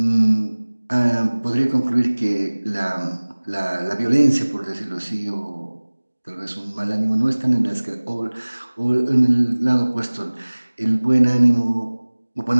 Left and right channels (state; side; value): inverted; both; correlation -1.00